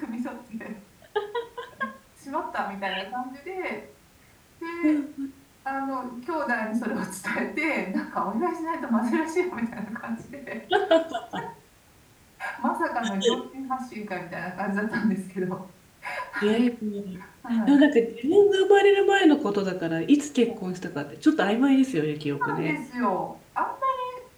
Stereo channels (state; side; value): identical; both; correlation 1.00